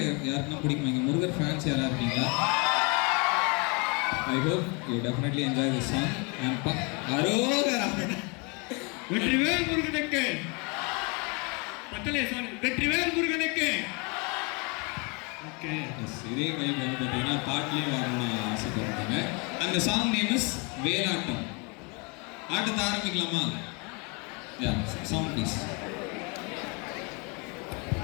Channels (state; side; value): quieter; right; 31.7 dB